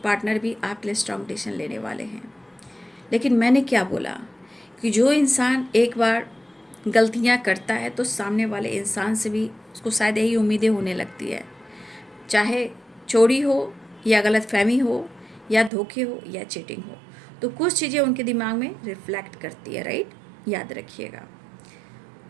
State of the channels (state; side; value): drops out; left; at 15.7 s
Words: भी आपके लिए स्ट्रॉन्ग डिसीजन लेने वाले हैं। लेकिन मैंने क्या बोला कि जो इंसान एक बार गलतियां करता है तो सामने वाले इंसान से भी उसको शायद यही उम्मीदें होने लगती है, चाहे चोरी हो या गलतफहमी हो या धोखे हो या चीटिंग हो। तो कुछ चीज़ें उनके दिमाग में रिफ्लेक्ट करती है, राइट, याद रखिएगा।